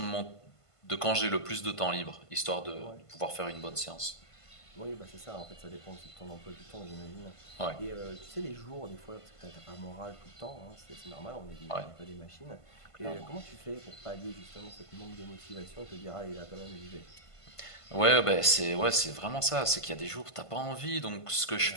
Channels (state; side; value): late; right; 1.5 ms